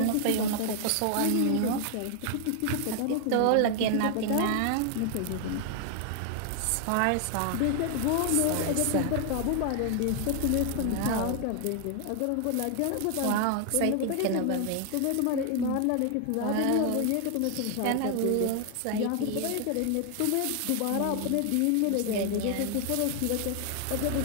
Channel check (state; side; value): different; both; correlation 0.00